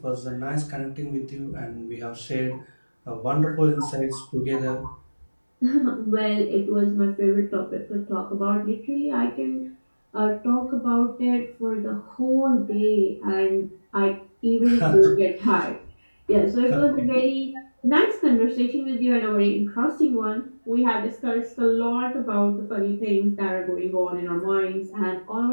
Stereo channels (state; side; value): inverted; both; correlation -1.00